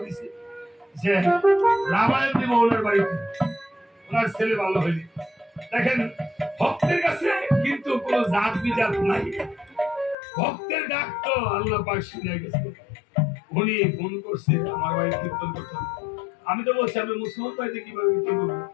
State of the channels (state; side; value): drops out; right; at 10.2 s